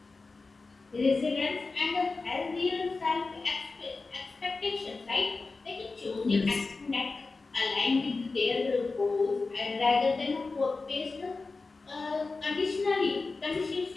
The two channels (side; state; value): right; quieter; 3.9 dB